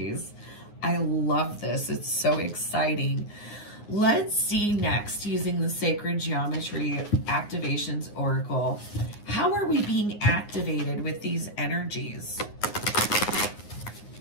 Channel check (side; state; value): right; late; 9.6 ms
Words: I love this. It's so exciting. Let's see next, using the Sacred Geometry Activations Oracle. How are we being activated with these energies?